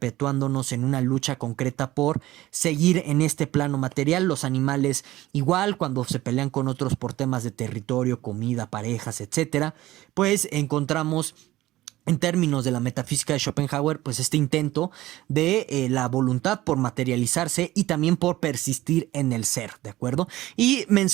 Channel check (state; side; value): quieter; left; 16.6 dB